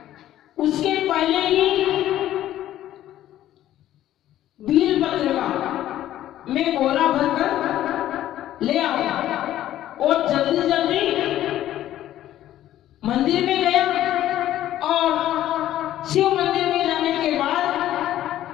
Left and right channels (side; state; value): right; quieter; 13.0 dB